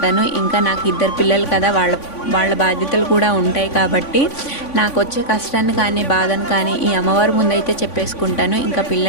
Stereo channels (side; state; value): right; late; 3.5 ms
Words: ఇంకా నాకు 2 పిల్లలు కదా, వాళ్ళ బాధ్యతలు కూడా ఉంటాయి కాబట్టి నాకు వచ్చే కష్టాన్ని కానీ బాధను కానీ ఈ అమ్మవారి ముందైతే చెప్పేసుకుంటాను. ఇంకా